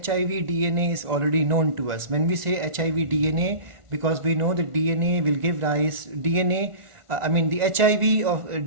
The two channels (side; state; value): left; late; 1.4 ms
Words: DNA is already known to us. When we say HIV DNA, because we know that DNA will give rise, the HIV's